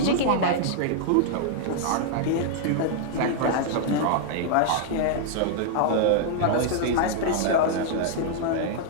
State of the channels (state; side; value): different; both; correlation -0.01